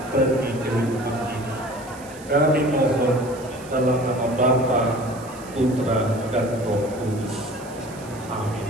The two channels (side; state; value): right; noise; hiss, 20 dB below the sound